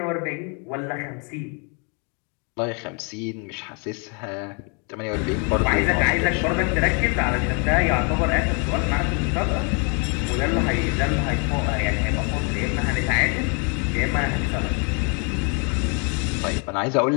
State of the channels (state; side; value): quieter; right; 35.9 dB